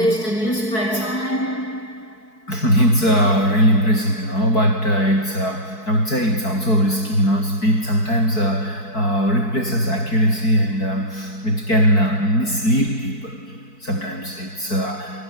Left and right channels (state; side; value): late; right; 4.6 ms